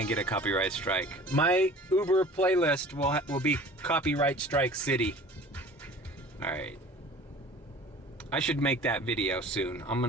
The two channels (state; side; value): normal; both; correlation 0.44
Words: a copyright strike. My Uber playlist will be copyright strike city. All right. I should make that video soon. I'm